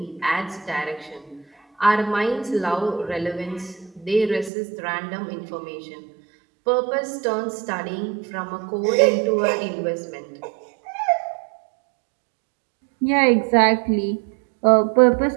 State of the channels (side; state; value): left; drops out; at 4.5 s